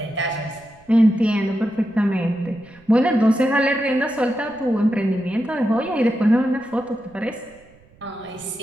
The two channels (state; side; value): noise; right; rumble, 28 dB below the sound